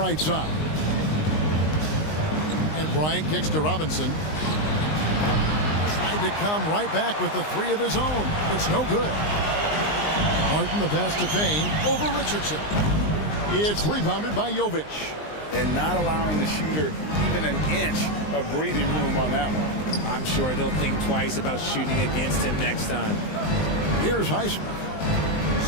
side. And Bryant kicks to Robinson. Tried to come right back with the 3 of his own. It's no good. Martin the pass to Payne over Richardson. It's rebounded by Jovic. And not allowing the shooter even an inch of breathing room on that one. I'm sure they'll think twice about shooting against him next time. Here's Highsmith.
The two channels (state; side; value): late; right; 19 ms